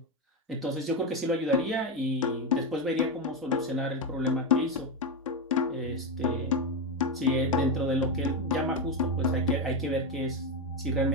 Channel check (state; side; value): normal; both; correlation 0.09